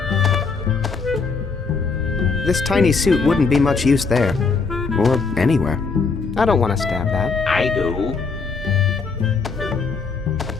This tiny suit wouldn't be much use there. Or anywhere. I don't want to stab that. I do.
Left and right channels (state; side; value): quieter; right; 4.7 dB